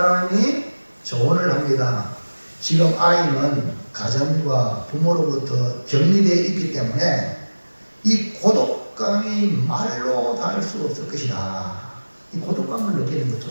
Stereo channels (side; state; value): both; inverted; correlation -1.00